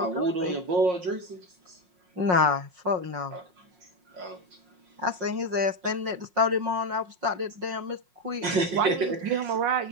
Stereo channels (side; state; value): left; late; 5.5 ms